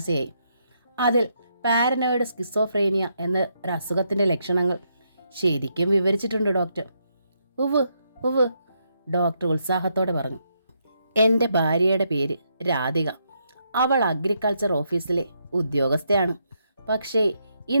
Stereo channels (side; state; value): both; inverted; correlation -0.78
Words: അതിൽ പാരനോയിഡ് സ്കിസോഫ്രേനിയ എന്ന ഒരു അസുഖത്തിൻ്റെ ലക്ഷണങ്ങൾ ശരിക്കും വിവരിച്ചിട്ടുണ്ട് ഡോക്ടർ. ഉവ് ഉവ്, ഡോക്ടർ ഉത്സാഹത്തോടെ പറഞ്ഞു. എൻ്റെ ഭാര്യയുടെ പേര് രാധിക. അവൾ അഗ്രികൾച്ചർ ഓഫീസിലെ ഉദ്യോഗസ്ഥയാണ്. പക്ഷേ